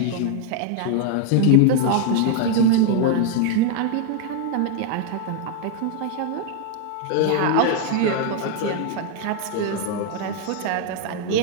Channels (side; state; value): both; different; correlation -0.01